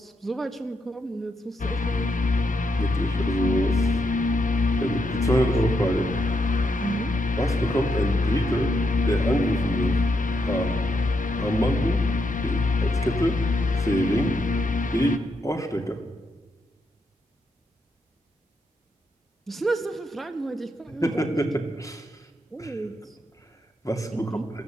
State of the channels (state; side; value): normal; both; correlation 0.81